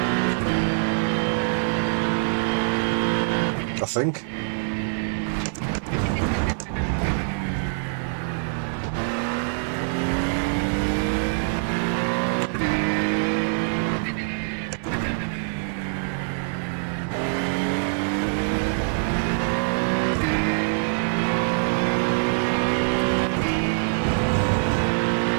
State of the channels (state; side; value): silent; left; digital silence